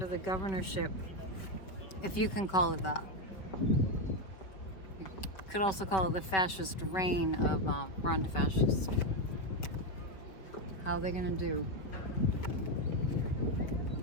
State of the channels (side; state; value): right; late; 5.1 ms